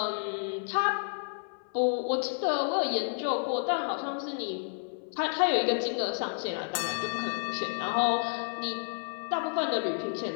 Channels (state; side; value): silent; right; 57 dB below the other